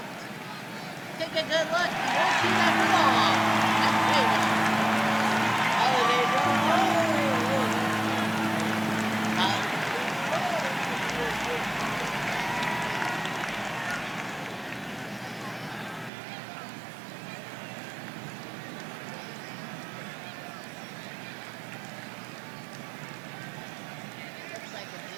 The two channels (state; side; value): drops out; left; at 16.1 s